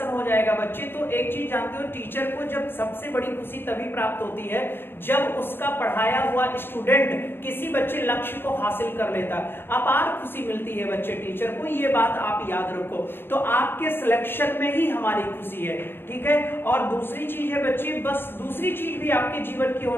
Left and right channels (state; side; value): late; right; 0.10 ms